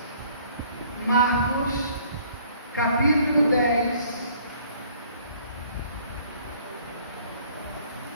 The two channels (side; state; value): both; inverted; correlation -0.58